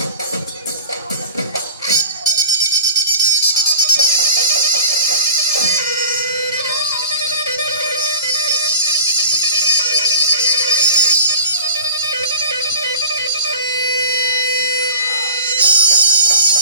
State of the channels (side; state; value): both; inverted; correlation -0.38